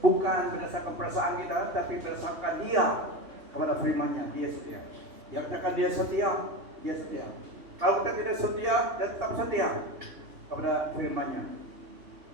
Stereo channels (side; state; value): left; late; 3.2 ms